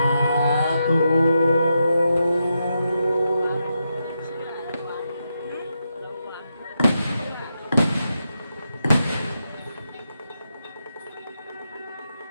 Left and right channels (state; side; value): inverted; both; correlation -0.85